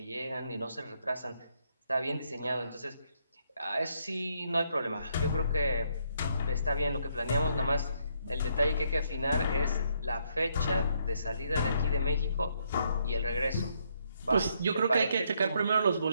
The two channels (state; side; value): inverted; both; correlation -0.73